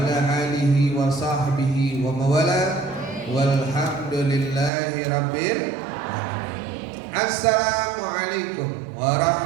alihi wa sahbihi wa mawala walhamdulillahi rabbil alamin. Assalamualaikum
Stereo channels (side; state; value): left; drops out; at 4.7 s